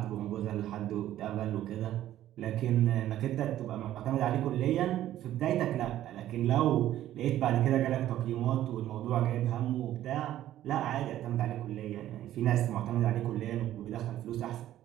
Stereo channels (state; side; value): quieter; left; 12.9 dB